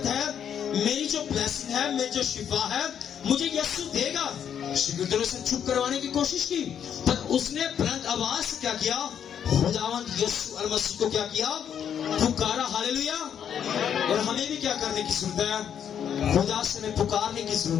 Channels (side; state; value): right; quieter; 8.7 dB